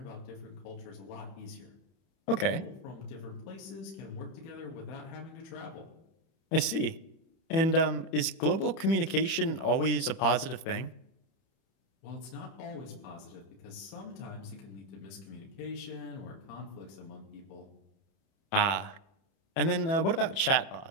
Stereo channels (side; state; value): right; late; 30 ms